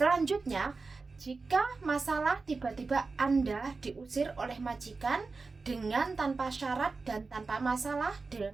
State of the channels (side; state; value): left; quieter; 4.1 dB